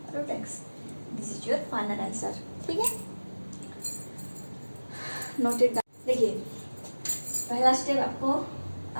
root x. This is your final answer. ठीक है, noted. देखिए पहला step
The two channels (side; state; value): both; inverted; correlation -1.00